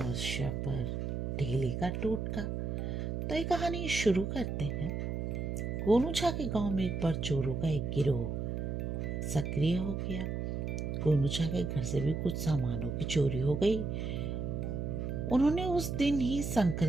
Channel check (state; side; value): noise; right; hum, 2 dB below the sound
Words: पर ढेले का टोटका। तो ये कहानी शुरू करते हैं। गोनू छा के गांव में एक बार चोरों का एक गिरोह सक्रिय हो गया। गोनू छा के घर से भी कुछ सामानों की चोरी हो गई। उन्होंने उस दिन ही